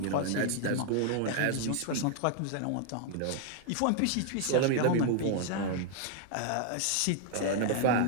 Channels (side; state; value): both; different; correlation 0.00